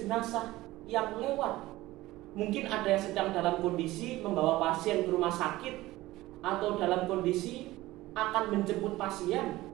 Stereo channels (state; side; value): quieter; left; 17.6 dB